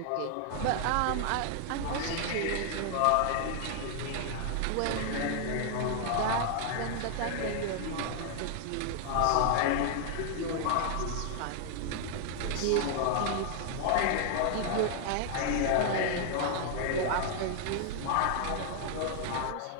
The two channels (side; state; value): both; different; correlation 0.00